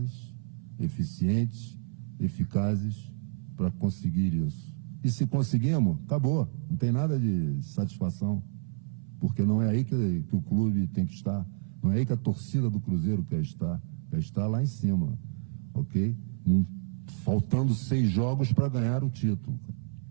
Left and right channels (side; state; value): left; silent; 58 dB below the other